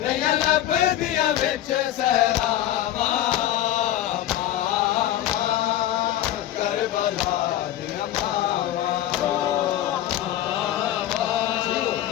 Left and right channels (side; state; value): right; quieter; 12.7 dB